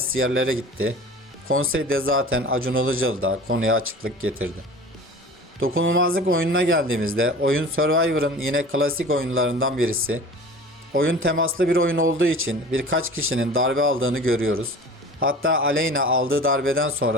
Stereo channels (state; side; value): normal; both; correlation 0.40